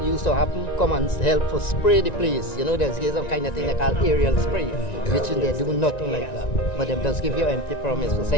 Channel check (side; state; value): right; late; 1.9 ms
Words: used to happen, come and help for spray the place. You know, there's some kind of thing they call aerial spray, which they do nothing like that. But they just give you empty promise to say,